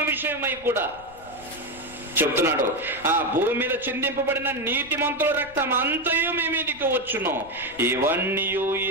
విషయమై కూడా చెప్తున్నాడు. ఆ భూమి మీద చిందింపబడిన నీతిమంతుల రక్తం అంతయు మీ మీదికి వచ్చును, ఇవన్నీ ఈ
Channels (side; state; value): left; noise; rumble, 22 dB below the sound